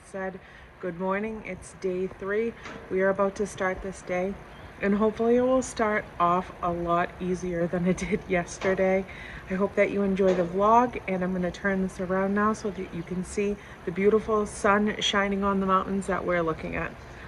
said. Good morning, it's day 3. We are about to start this day and hopefully it will start off a lot easier than it did yesterday. I hope that you enjoy the vlog, and I'm gonna turn this around now so that you can see the beautiful sun shining on the mountains that we're looking at.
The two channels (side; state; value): both; identical; correlation 1.00